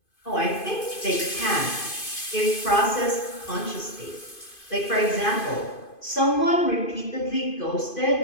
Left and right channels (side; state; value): right; late; 2.5 ms